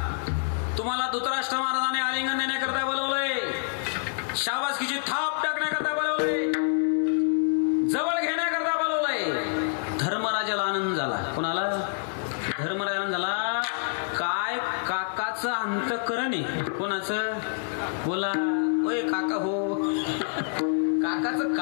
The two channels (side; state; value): right; silent; 60 dB below the other